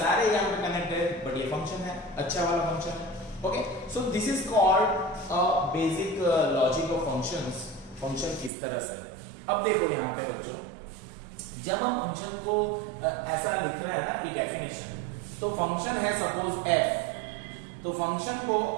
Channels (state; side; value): drops out; left; at 8.5 s